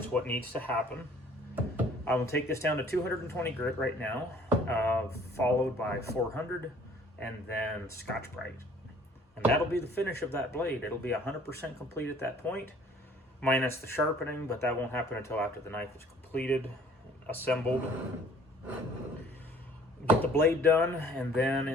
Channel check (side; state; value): both; normal; correlation 0.55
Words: what needs to happen. I will take this down to 220 grit right now, followed by 400, and then Scotch-Brite. And that'll be the finish of that blade. It'll be 100% complete at that point, minus the sharpening, but that won't happen until after the knife is completed, assembled. Get the blade done, and then